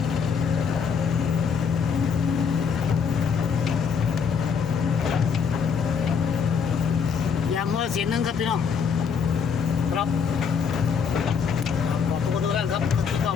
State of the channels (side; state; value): right; quieter; 6.3 dB